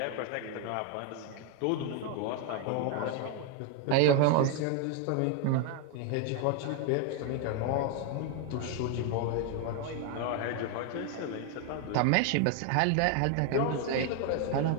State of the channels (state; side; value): different; both; correlation 0.01